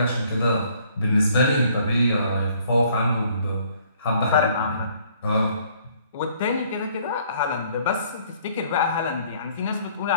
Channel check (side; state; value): both; inverted; correlation -0.61